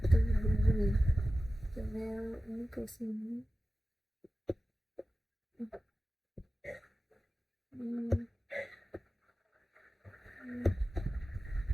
begini. channel ini ke sini.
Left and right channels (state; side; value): normal; both; correlation 0.95